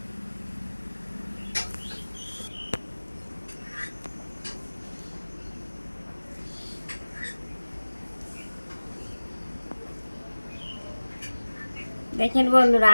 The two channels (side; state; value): both; inverted; correlation -1.00